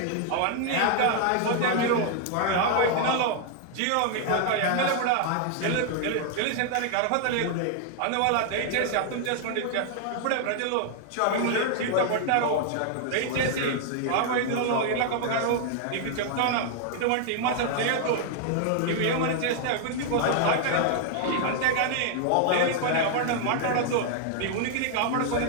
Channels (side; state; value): both; different; correlation 0.00